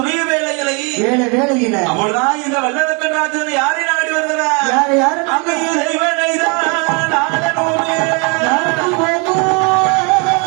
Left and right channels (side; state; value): left; quieter; 32.7 dB